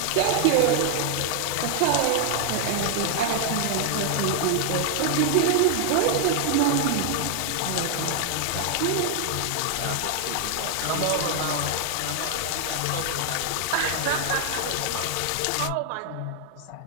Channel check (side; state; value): both; different; correlation 0.00